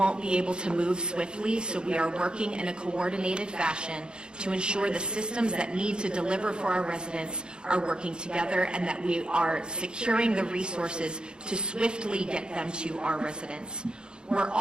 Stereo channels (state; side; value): late; left; 0.049 ms